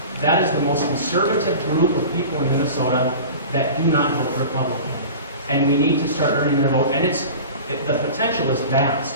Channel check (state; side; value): inverted; both; correlation -0.36